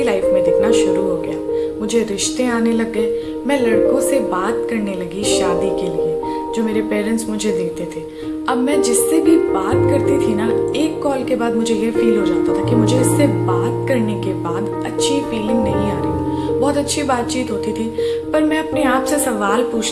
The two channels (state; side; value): identical; both; correlation 1.00